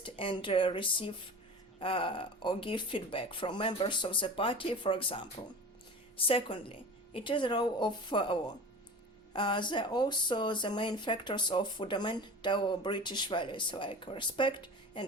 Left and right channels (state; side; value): normal; both; correlation 0.36